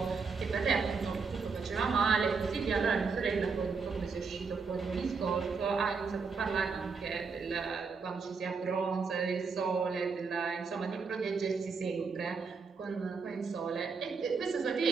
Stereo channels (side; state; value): left; quieter; 5.0 dB